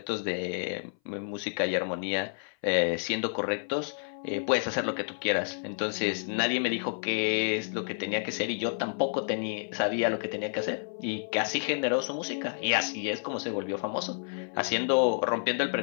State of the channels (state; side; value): silent; right; 58 dB below the other